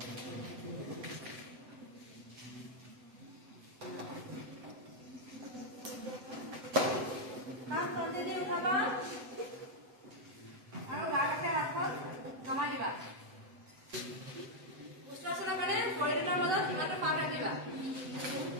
আৰু গাতে হাতখন নমাই দিবা উষ্ট্ৰাসনৰ কাৰণে ভৰিৰ মাজত ইমানটো পাক ৰাখিবা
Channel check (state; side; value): late; left; 7.8 ms